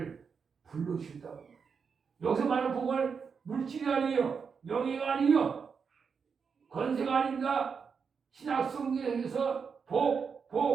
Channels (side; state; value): left; quieter; 5.9 dB